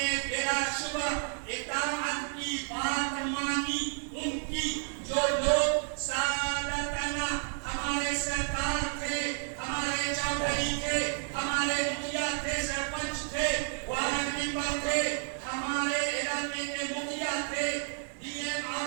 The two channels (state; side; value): silent; left; 57 dB below the other